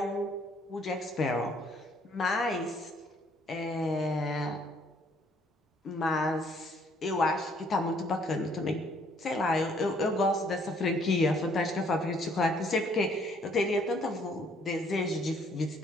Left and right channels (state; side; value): normal; both; correlation 0.64